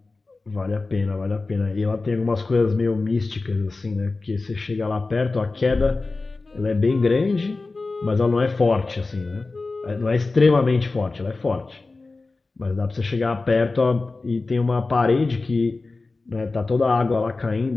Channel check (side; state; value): right; quieter; 3.6 dB